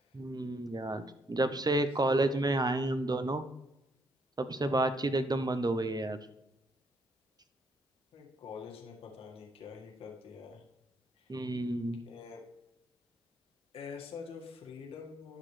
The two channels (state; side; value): normal; both; correlation 0.71